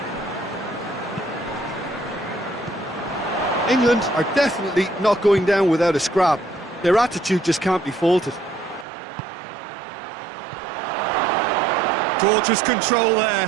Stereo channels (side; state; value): left; drops out; at 8.8 s